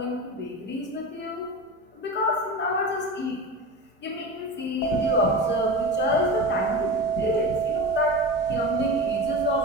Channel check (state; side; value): normal; both; correlation 0.27